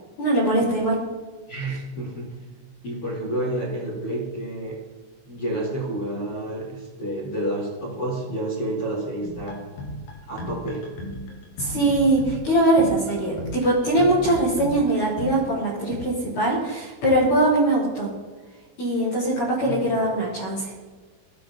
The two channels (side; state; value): right; late; 21 ms